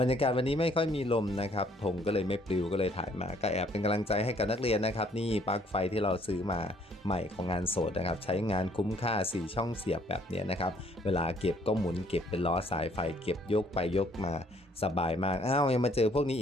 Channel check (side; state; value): both; normal; correlation 0.63